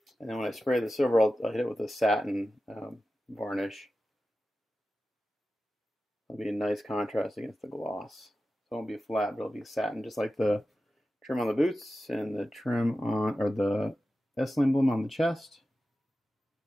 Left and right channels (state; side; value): normal; both; correlation 0.93